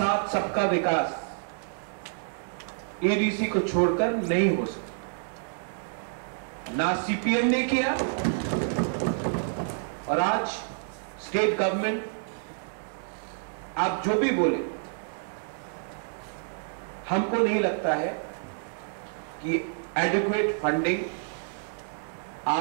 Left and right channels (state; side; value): silent; left; digital silence